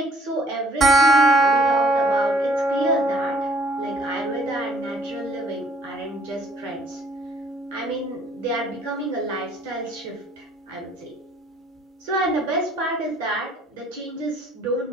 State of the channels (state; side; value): normal; both; correlation 0.60